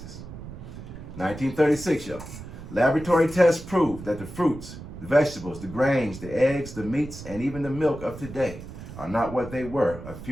1936, y'all. Laboratory tests proved that the fruits, the vegetables, the grains, the eggs, the meats, and even the milk of today are not what they were a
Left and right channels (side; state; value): right; noise; rumble, 13 dB below the sound